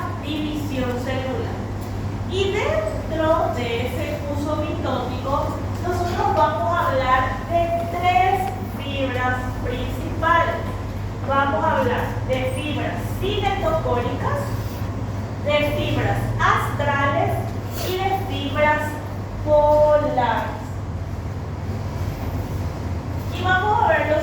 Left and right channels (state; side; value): identical; both; correlation 1.00